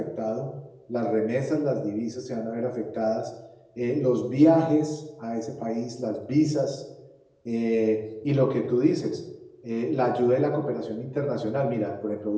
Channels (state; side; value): identical; both; correlation 1.00